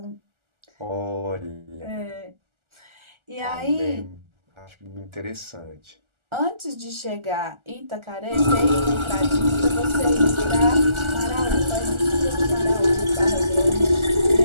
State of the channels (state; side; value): late; left; 1.4 ms